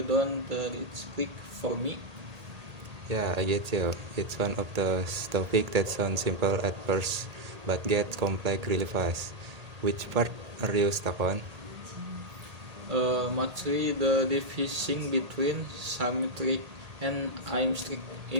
reach click for me. Yeah, I get you. It's one of those topics that sounds simple at first, but gets complex really fast. Which part are you stuck on? Mostly the division between symmetric and asymmetric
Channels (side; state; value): left; late; 1.8 ms